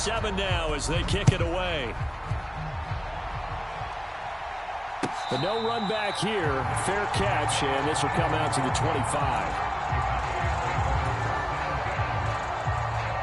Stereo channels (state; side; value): identical; both; correlation 1.00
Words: now as they kick it away. The no run back here, fair catch, and this will come out to the 25.